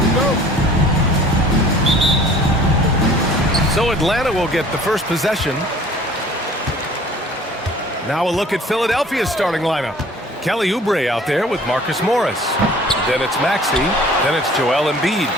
So Atlanta will get the first possession. Now a look at Philadelphia's starting lineup. Kelly Oubre out there with Marcus Morris. Then it's Maxey. Then it's Joel Embiid.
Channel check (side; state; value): both; normal; correlation 0.50